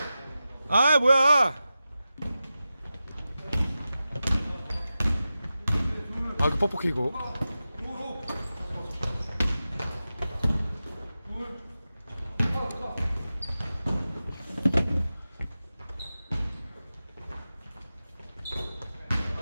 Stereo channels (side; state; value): both; inverted; correlation -0.93